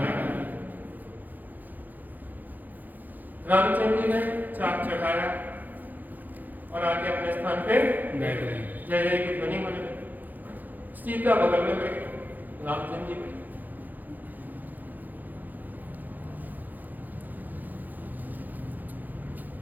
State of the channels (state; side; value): late; left; 0.084 ms